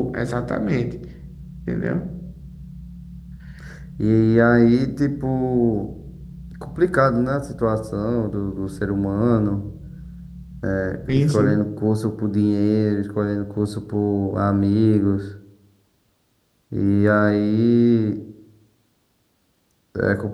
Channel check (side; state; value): both; identical; correlation 1.00